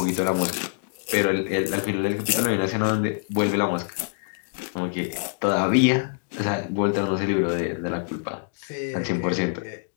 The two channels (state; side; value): silent; right; digital silence